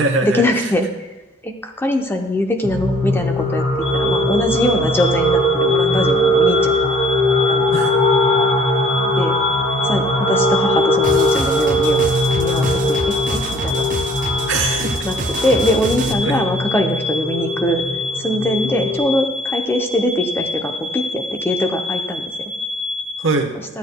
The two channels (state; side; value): normal; both; correlation 0.57